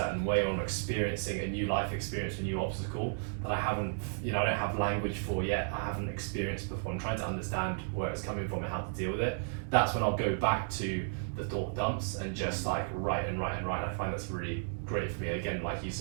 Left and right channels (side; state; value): left; silent; digital silence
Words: way, or I'm experiencing a new life experience, a new obstacle that I haven't, I don't have language for yet, I haven't experienced before, I'm trying to understand where it's coming from and how to deal with it. That's when I'll go back to the thought dumps and just like write and write and write. And I find that's really great for me. Again, like you